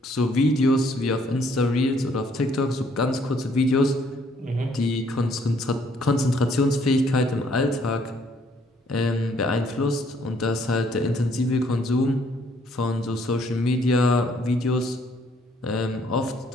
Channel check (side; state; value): both; normal; correlation 0.65